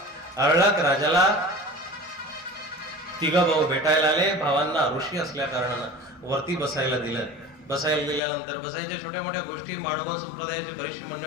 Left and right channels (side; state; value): right; drops out; at 8.2 s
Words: अर्णक राजाला तिघ भाऊ भेटायला आले. भावांना ऋषी असल्या कारणानं वरती बसायला दिलं. बसायला दिल्यानंतर बसायच्या छोट्या मोठ्या गोष्टी, माडवा संप्रदायाची बरीचशी